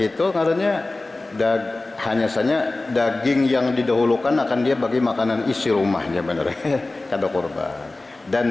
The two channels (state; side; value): quieter; right; 3.1 dB